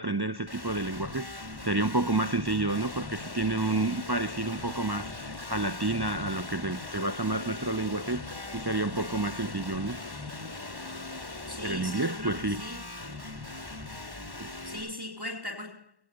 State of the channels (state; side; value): late; left; 1.1 ms